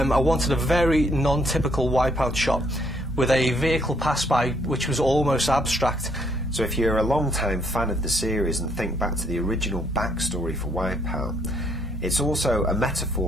wanted a very non-typical Wipeout shot with a vehicle pass by which was almost abstract. So if you're a long-time fan of the series and think back to the original backstory for Wipeout, it's also a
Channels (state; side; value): normal; both; correlation 0.68